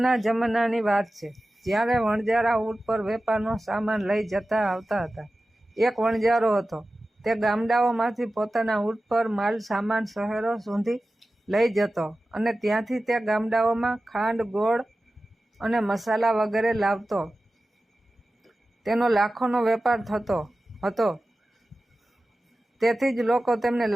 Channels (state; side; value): normal; both; correlation 0.95